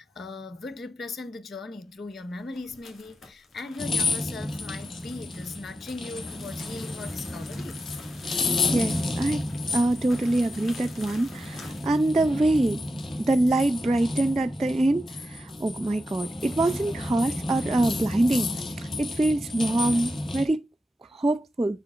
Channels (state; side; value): normal; both; correlation 0.89